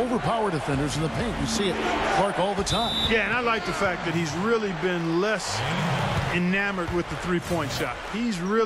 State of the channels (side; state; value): both; identical; correlation 1.00